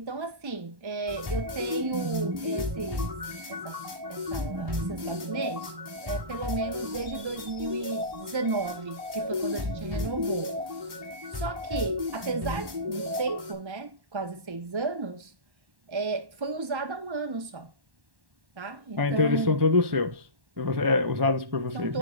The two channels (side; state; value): left; late; 1.1 ms